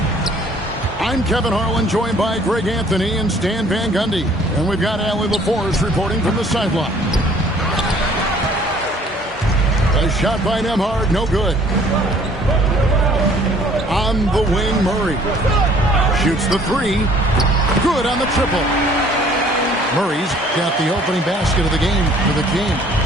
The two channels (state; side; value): normal; both; correlation 0.56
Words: I'm Kevin Harlan, joined by Greg Anthony and Stan Van Gundy. And we've got Allie LaForce reporting from the sideline. A shot by Nembhard, no good. On the wing, Murray. Shoots the three. Good on the triple. Murray's got the opening basket of the game for the Kings.